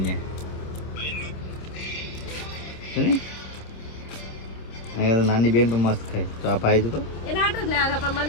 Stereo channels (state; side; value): late; right; 26 ms